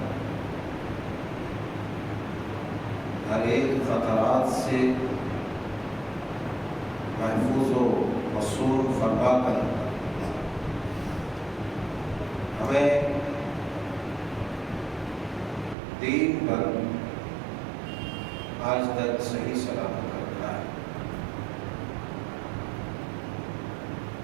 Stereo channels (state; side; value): drops out; left; at 15.8 s